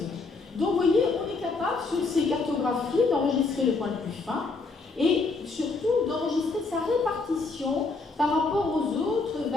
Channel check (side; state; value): right; quieter; 3.9 dB